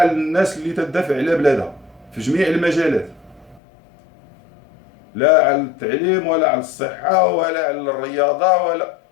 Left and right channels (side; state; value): right; drops out; at 3.6 s